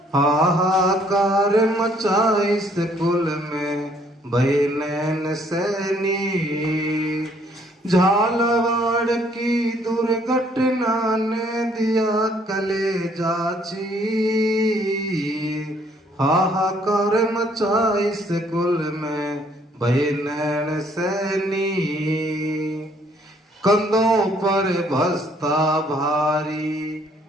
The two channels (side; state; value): both; normal; correlation 0.64